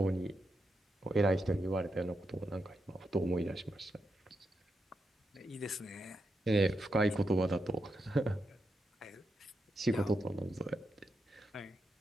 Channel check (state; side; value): normal; both; correlation 0.85